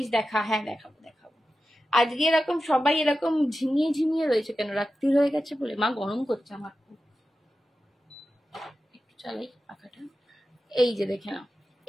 দেখা, হ্যাঁ দেখাবো দেখাবো। আজকে এরকম সবাই এরকম ঝিমিয়ে ঝিমিয়ে রয়েছে কেন? রাত্রি হয়ে গেছে বলে? মা গরম করছে আমার খুব, একটু চালাই পাখাটা। এই যে দেখে নাও,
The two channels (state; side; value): normal; both; correlation 0.92